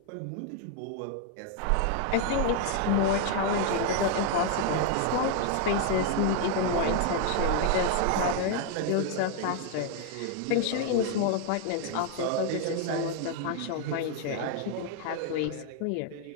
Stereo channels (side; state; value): both; different; correlation 0.00